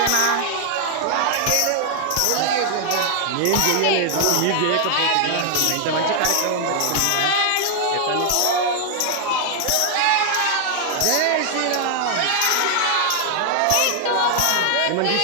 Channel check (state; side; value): different; both; correlation 0.00